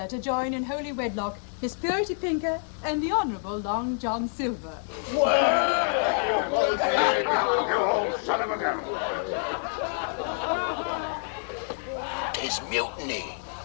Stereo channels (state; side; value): silent; right; 60 dB below the other